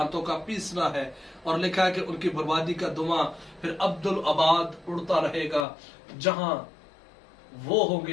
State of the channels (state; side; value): drops out; right; at 5.7 s